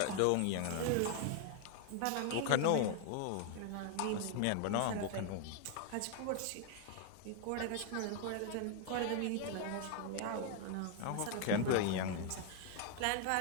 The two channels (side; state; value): both; different; correlation 0.01